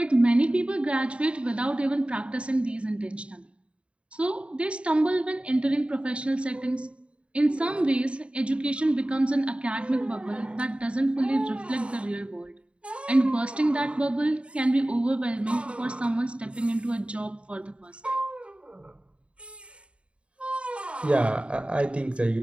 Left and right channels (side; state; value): left; late; 0.059 ms